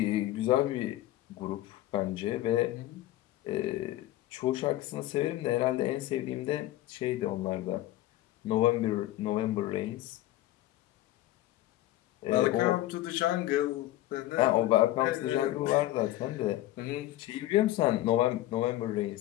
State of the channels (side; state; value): right; quieter; 15.5 dB